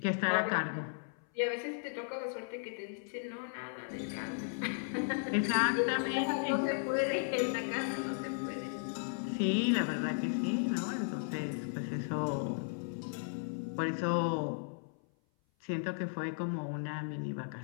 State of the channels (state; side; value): silent; right; 54 dB below the other